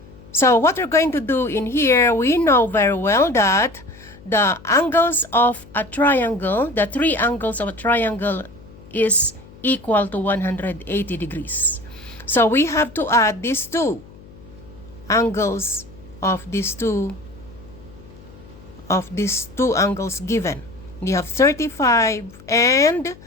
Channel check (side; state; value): left; noise; hum, 21 dB below the sound